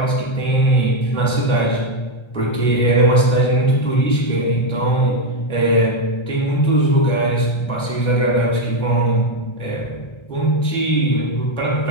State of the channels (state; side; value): late; right; 1.3 ms